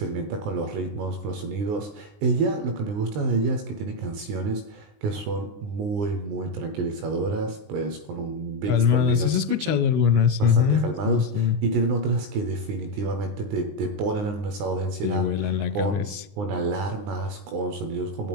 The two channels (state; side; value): late; left; 19 ms